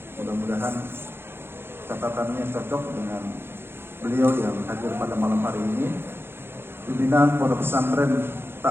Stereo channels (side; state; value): left; late; 0.11 ms